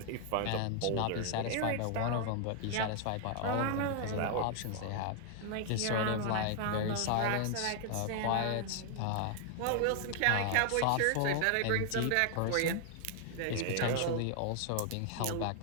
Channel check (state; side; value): different; both; correlation 0.00